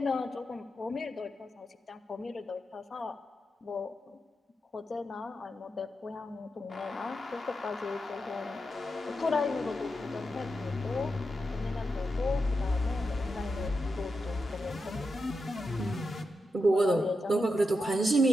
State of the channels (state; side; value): normal; both; correlation 0.87